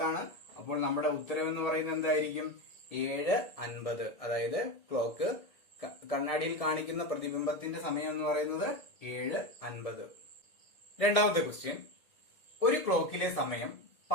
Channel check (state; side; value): late; right; 1.8 ms